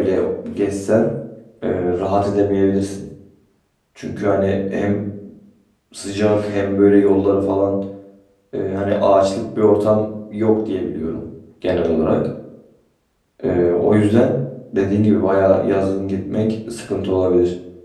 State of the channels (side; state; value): both; identical; correlation 1.00